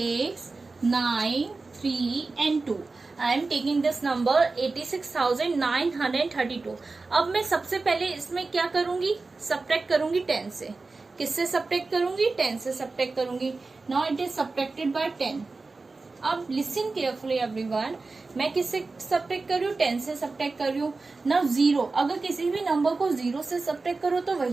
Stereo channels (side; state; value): left; quieter; 3.8 dB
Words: 9, 3 and 2. I am taking this number 86,932. अब मैं सबसे पहले इसमें क्या करूंगी? सब्ट्रैक्ट करूंगी 10 से. किससे सब्ट्रैक्ट करूंगी? 10 से सब्ट्रैक्ट करूंगी. Now it is subtracted by 10. अब लिसन केयरफुली एवरीवन, मैं किससे सब्ट्रैक्ट कर रही हूँ? 10 से सब्ट्रैक्ट कर रही हूँ. नाउ 0, अगर किसी भी नंबर को 0 से सब्ट्रैक्ट करो तो